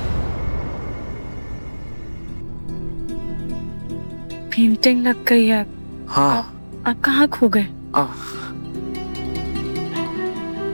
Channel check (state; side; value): inverted; both; correlation -1.00